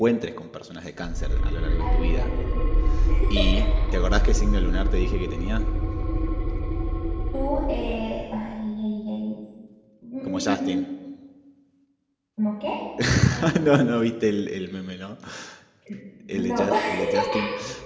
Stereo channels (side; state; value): both; identical; correlation 1.00